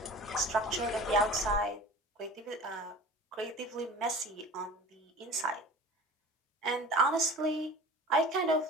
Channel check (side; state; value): both; normal; correlation 0.39